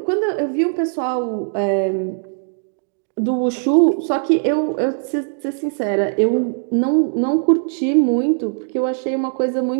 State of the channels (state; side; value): silent; left; digital silence